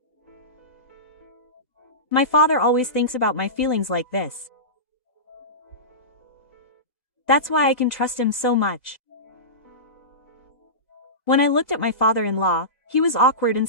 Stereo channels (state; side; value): late; right; 1.9 ms